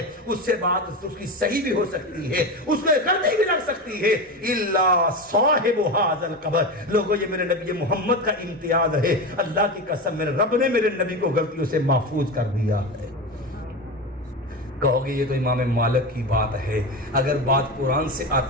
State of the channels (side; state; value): both; normal; correlation 0.21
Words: اس سے بات اس کی صحیح بھی ہو سکتی ہے، اس میں غلطی بھی لگ سکتی ہے، الا صاحب هذا القبر۔ لوگوں یہ میرے نبی محمد کا امتیاز ہے، اللہ کی قسم میرے رب نے میرے نبی کو غلطیوں سے محفوظ کر دیا ہے۔ کہو گے یہ تو امام مالک کی بات ہے، اگر بات قرآن سے